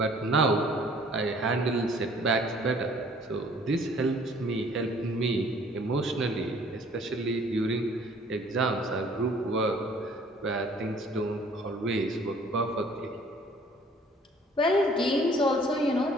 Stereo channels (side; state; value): both; normal; correlation 0.56